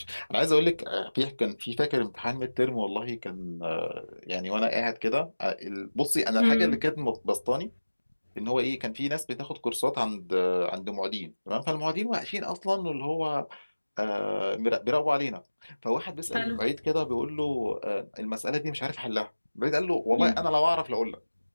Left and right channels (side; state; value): both; inverted; correlation -1.00